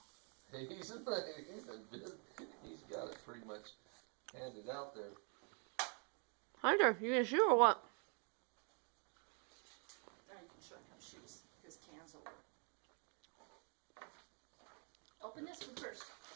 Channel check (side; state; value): left; quieter; 38.3 dB